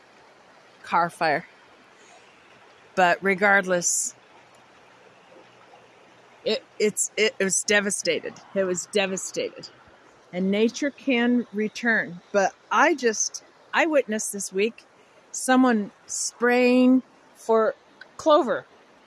car fire. But regardless, it was devastated. It was devastated. And nature can return. But I witnessed this week someone spraying for clover.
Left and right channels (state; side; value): identical; both; correlation 1.00